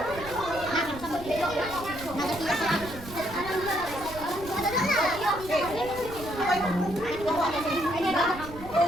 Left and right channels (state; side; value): noise; right; rumble, 14 dB below the sound